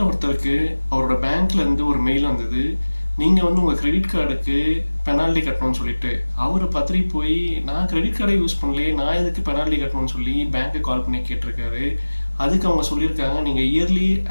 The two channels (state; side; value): inverted; both; correlation -1.00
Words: ஒருத்தருக்கு அவரோட பேங்க்லேருந்து ஒரு மெயில் வந்தது. நீங்கள் வந்து உங்கள் கிரெடிட் கார்டுக்கு பெனால்ட்டி கட்டணும்னு சொல்லிட்டு. அவர் பத்திரி போய் நான் கிரெடிட் கார்டே யூஸ் பண்ணலையே, நான் எதுக்கு பெனால்ட்டி கட்டணும்னு சொல்லி பேங்க்கு கால் பண்ணி கேட்டிருக்காரு. அதுக்கு அவங்க சொல்லியிருக்காங்க, நீங்கள் இயர்லி